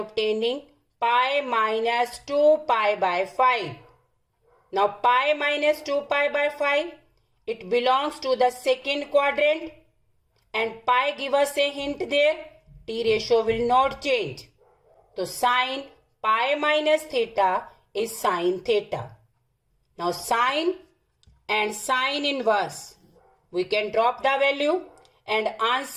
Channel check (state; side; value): identical; both; correlation 1.00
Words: pi minus 2 pi by 5. Now pi minus 2 pi by 5, it belongs to the second quadrant and pi give us a hint there. T ratio will not change. So sine pi minus theta is sine theta. Now sine and sine inverse, we can drop the value and